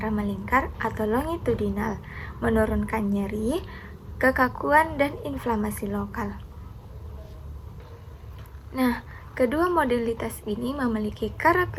melingkar atau longitudinal, menurunkan nyeri, kekakuan, dan inflamasi lokal. Nah, kedua modalitas ini memiliki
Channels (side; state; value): both; identical; correlation 1.00